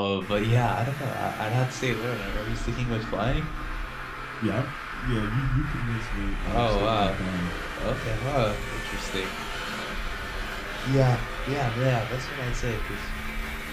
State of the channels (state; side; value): identical; both; correlation 1.00